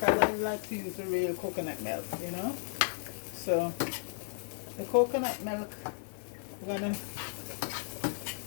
I like to use the real coconut milk, you know. So the coconut milk, I'm gonna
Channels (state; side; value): silent; right; digital silence